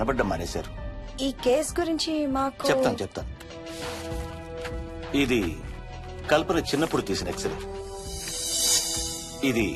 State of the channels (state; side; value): identical; both; correlation 1.00